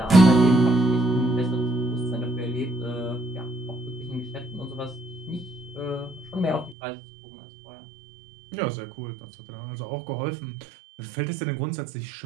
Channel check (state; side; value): drops out; left; at 6.8 s